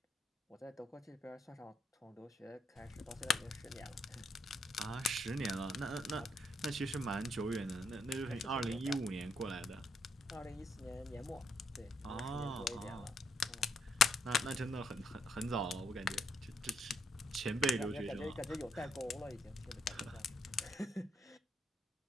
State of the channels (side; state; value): both; normal; correlation 0.76